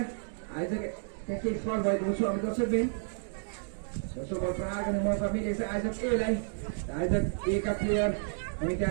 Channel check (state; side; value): silent; left; digital silence